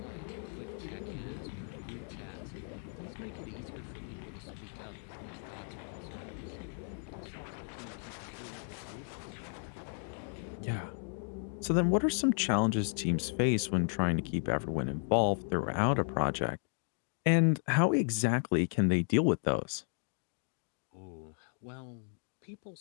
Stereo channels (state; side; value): silent; right; 55 dB below the other